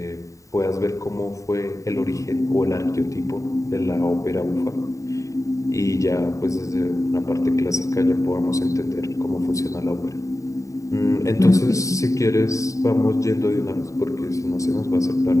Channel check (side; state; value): right; late; 0.16 ms